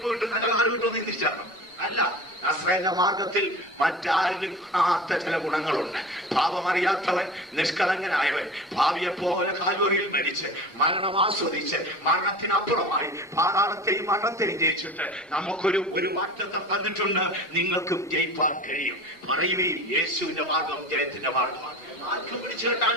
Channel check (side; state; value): both; normal; correlation 0.35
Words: കിട്ടും, നല്ല നാട് കിട്ടുമെന്ന് ചിന്തിച്ചാണ്. അല്ല, നസ്രേന്റെ മാർഗത്തിൽ മറ്റാരിലും കാണാത്ത ചില ഗുണങ്ങളുണ്ട്. പാപമറിയാത്തവൻ, നിഷ്കളങ്കനായവൻ, ഭാവിയെ പോലെ കാൽവറിയിൽ മരിച്ച് മരണം ആസ്വദിച്ച് മരണത്തിനപ്പുറമായി പാതാളത്തെയും മരണത്തെയും ജയിച്ചിട്ട് നമുക്കൊരു വാഗ്ദത്തം തന്നിട്ടുണ്ട്. നിങ്ങൾക്കും ജയിപ്പാൻ കഴിയും. പറയുകയും യേശുവിന്റെ മാർഗം ജയത്തിന്റെ മാർഗമാണ്. ആർക്കും പിടിച്ചു കെട്ടാൻ